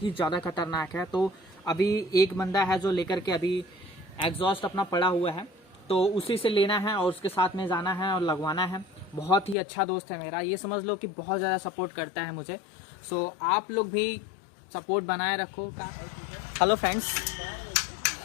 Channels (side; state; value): right; drops out; at 9.6 s